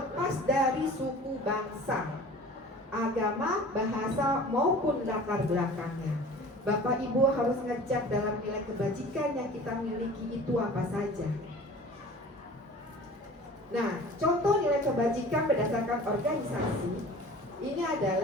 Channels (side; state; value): both; normal; correlation 0.42